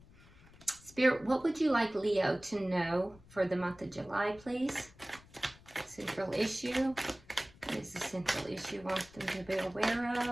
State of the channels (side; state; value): left; noise; rumble, 24 dB below the sound